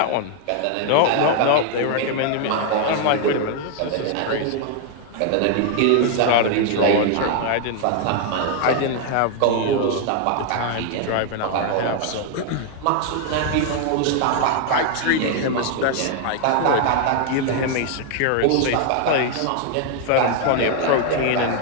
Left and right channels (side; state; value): both; different; correlation 0.00